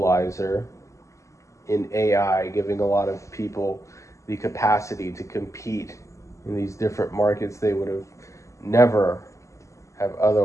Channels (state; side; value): late; right; 0.15 ms